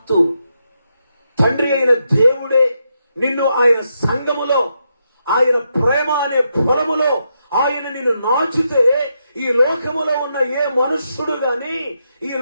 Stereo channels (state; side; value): inverted; both; correlation -0.82